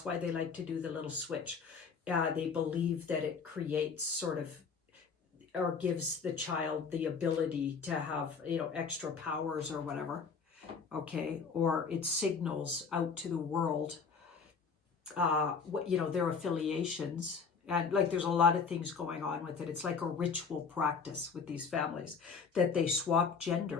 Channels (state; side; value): quieter; right; 5.5 dB